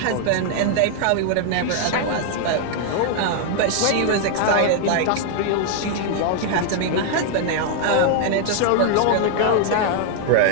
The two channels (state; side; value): different; both; correlation 0.00